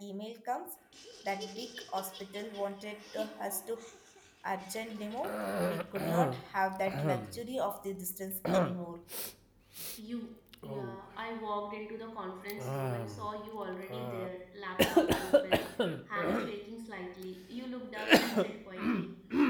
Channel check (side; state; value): both; identical; correlation 1.00